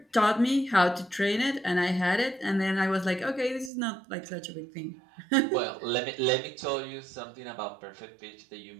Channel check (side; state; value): left; drops out; at 3.7 s